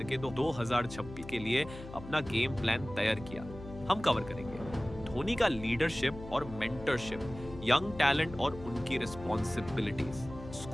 2026 के लिए अपना गेम प्लान तैयार किया। हम कवर करेंगे धोनी का लीडरशिप और मेंटरशिप, यंग टैलेंट और उनकी रिस्पॉन्सिबिलिटीज,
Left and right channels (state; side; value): noise; left; hum, 13 dB below the sound